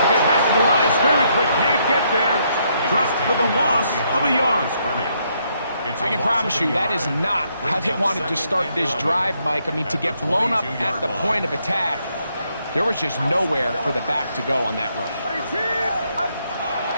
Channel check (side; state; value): both; inverted; correlation -0.74